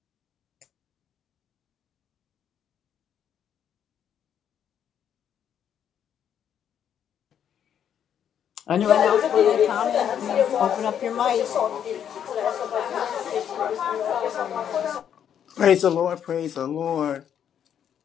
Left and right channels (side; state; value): right; quieter; 9.0 dB